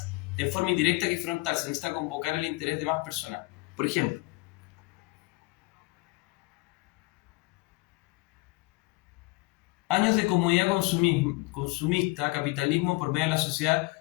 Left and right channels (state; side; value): quieter; right; 24.3 dB